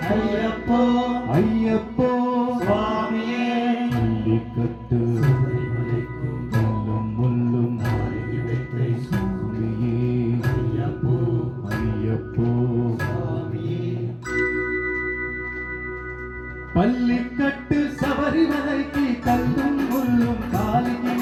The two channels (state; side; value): identical; both; correlation 1.00